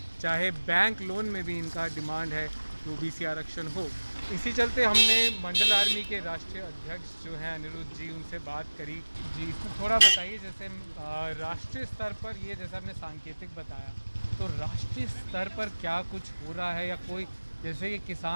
चाहे बैंक लोन में भी इनका डिमांड है कि ओबीसी आरक्षण हो। इसी चलते हमने मंडल आर्मी के राष्ट्रीय अध्यक्ष जो हैं अनिरुद्ध जी, उनसे बात करी। जी, इसमें थोड़ा बताइए, जैसे राष्ट्रीय स्तर पर ये जैसा आपने सांकेतिक बताया, तो राष्ट्रीय स्तर पर क्या कुछ हो रहा है, या कोई जैसे ये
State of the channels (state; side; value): inverted; both; correlation -1.00